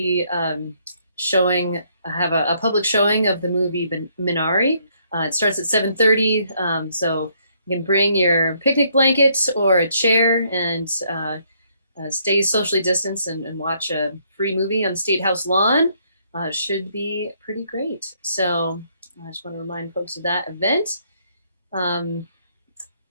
have a public showing of the movie Minari. It starts at 7:30, so you can bring your picnic blanket or a chair and stay socially distanced and watch a free movie on the State House lawn. Should be pretty great. So I just want to remind folks of that event. And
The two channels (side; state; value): both; inverted; correlation -0.70